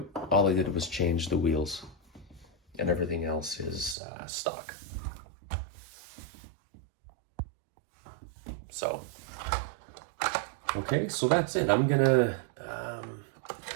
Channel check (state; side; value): drops out; left; at 4.0 s